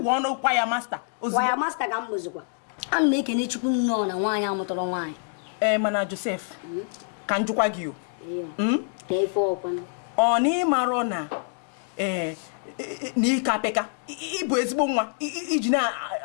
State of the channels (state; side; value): silent; right; 60 dB below the other